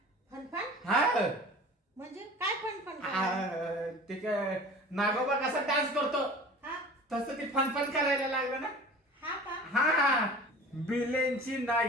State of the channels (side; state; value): both; normal; correlation 0.41